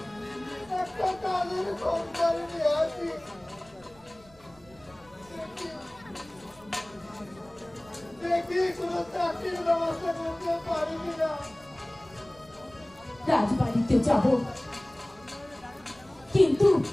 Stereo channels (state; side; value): noise; right; rumble, 26 dB below the sound